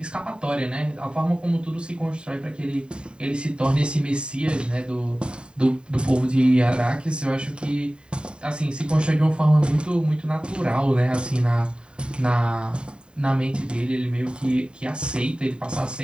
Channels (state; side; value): late; left; 0.051 ms